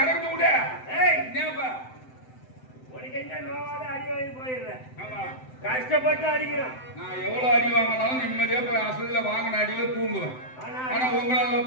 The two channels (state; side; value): late; right; 7.8 ms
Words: கடக்கு விட. என்னப்பா உனக்கு என்ன நோவாத அடி வாங்கி போயிடுறேன். ஆமா கஷ்டப்பட்டு அடிக்கிறோம். நான் எவ்வளவு அடி வாங்கினாலும் நிம்மதியா போய் அசல்ல வாங்கின அடியில தூங்குவேன். ஆனா உங்களால